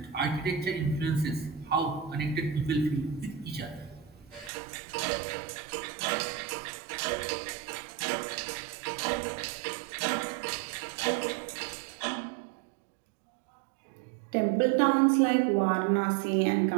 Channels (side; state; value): left; drops out; at 4.5 s